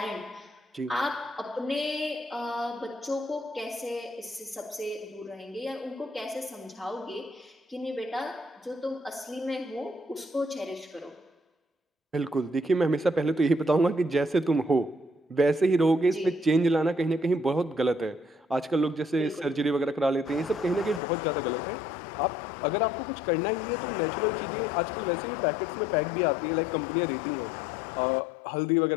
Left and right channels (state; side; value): drops out; right; at 21.0 s